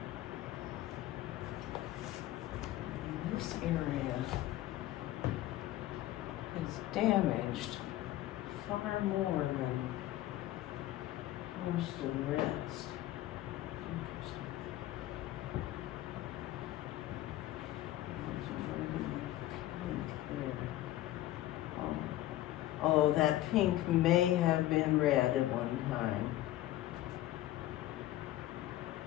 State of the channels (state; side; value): quieter; right; 14.8 dB